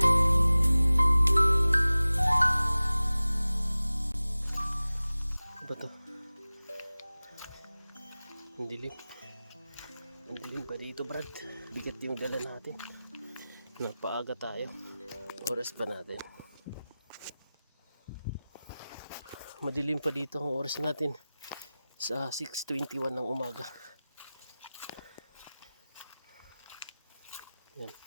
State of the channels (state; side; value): inverted; both; correlation -0.97